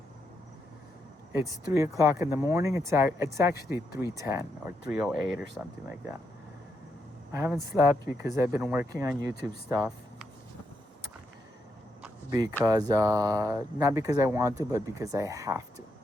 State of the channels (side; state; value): both; normal; correlation 0.80